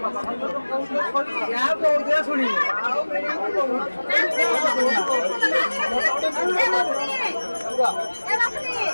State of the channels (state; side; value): inverted; both; correlation -1.00